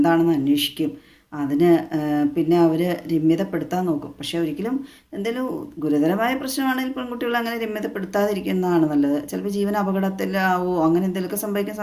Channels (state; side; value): identical; both; correlation 1.00